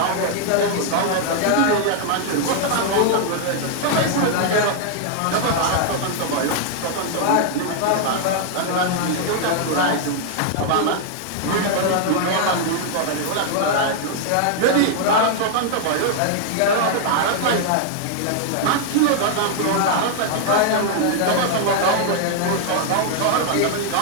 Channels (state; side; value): different; both; correlation 0.00